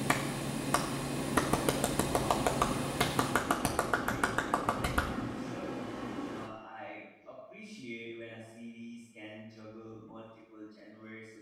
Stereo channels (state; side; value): identical; both; correlation 1.00